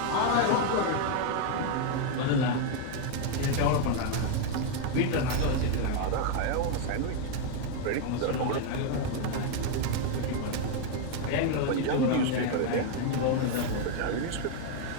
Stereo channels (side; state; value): both; different; correlation 0.01